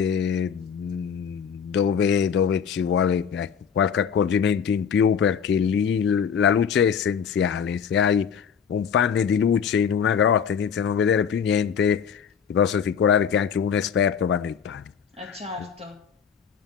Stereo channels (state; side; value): quieter; right; 7.2 dB